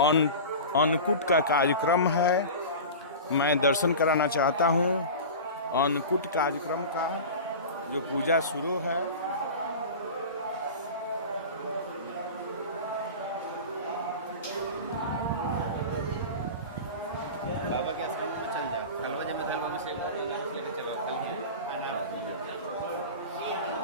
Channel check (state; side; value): inverted; both; correlation -0.31